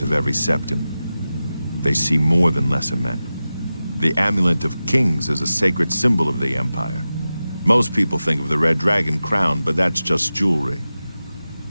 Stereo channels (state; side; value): inverted; both; correlation -0.94